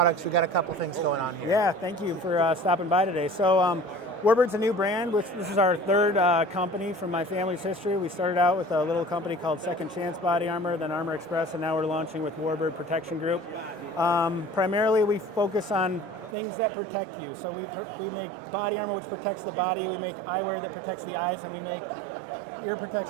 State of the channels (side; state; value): left; drops out; at 16.4 s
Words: We got a couple things going on here. Yeah, thank you for stopping by today. So Warbird's a new brand. This is our third company from my family's history. We started out with a little company called Second Chance Body Armor, then Armor Express, and now we're launching with Warbird Protection Group. Primarily, we focus on things that protect you. So we make body armor which protects the body, we make eyewear that protects the eyes, and we make ear